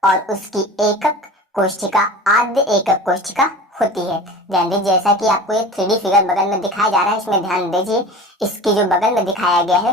और उसकी एकक कोशिका आद्य एकक कोशिका होती है। ध्यान दीजिए, जैसा कि आपको ये 3D फिगर बगल में दिखाया जा रहा है, इसमें ध्यान दीजिए, इसकी जो बगल में दिखाया गया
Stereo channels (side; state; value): both; normal; correlation 0.36